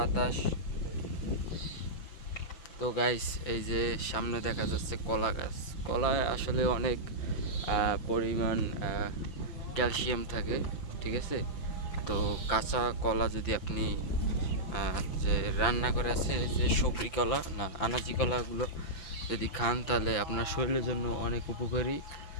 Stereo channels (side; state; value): right; late; 5.9 ms